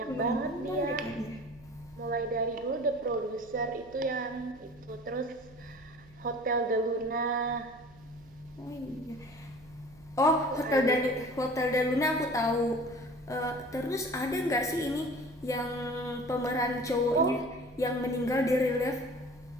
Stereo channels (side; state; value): right; noise; hum, 25 dB below the sound